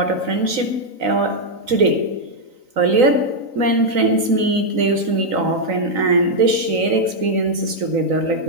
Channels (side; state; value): left; late; 3.9 ms